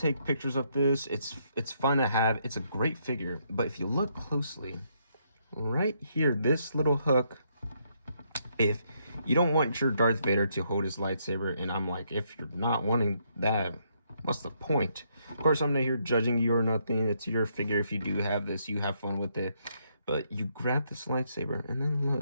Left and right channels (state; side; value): inverted; both; correlation -0.74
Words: pictures of this. It's fun to have. It's a great figure. But if you look closely, right here, this little hook, if you don't want your Darth Vader to hold his lightsaber, and I'm like, if you're not wanting that, what's the point? Of course, I'm not here judging you or nothing. It's your figure. If you do have this, you have fun with it. But you grab this lightsaber, and then